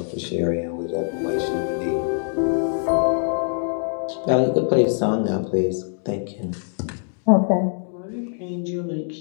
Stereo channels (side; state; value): right; silent; digital silence